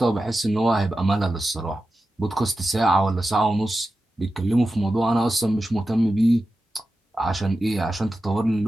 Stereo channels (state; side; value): normal; both; correlation 0.92